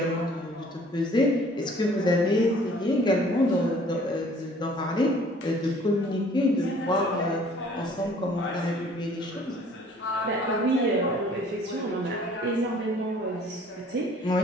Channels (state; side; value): normal; both; correlation 0.55